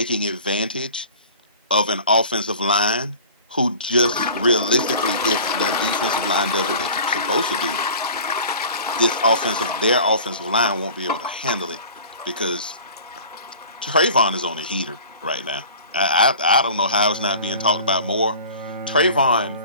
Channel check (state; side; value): inverted; both; correlation -0.43